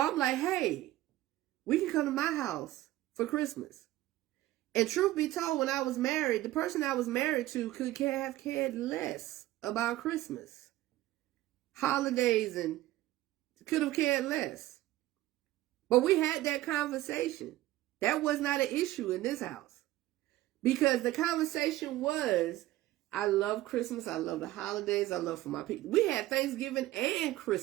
like, hey, we can come to my house for Christmas. And truth be told, when I was married, the person I was married to could have cared less about Christmas, holidays, and could have cared less. But we had that conversation. That was not an issue in this house. Because the conversation was, I love Christmas, I love the holidays, I love for my people. We had Thanksgiving and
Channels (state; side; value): quieter; left; 16.1 dB